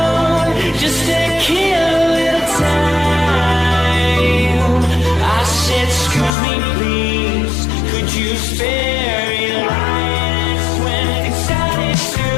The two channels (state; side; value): drops out; right; at 6.3 s